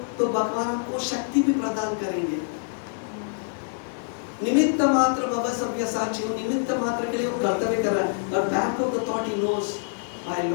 तो भगवान आपको शक्ति भी प्रदान करेंगे। निमित्त मात्र भव सव्यसाची, निमित्त मात्र के लिए वो कर्तव्य कर रहा है, और back of the thought he knows my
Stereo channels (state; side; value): silent; right; 60 dB below the other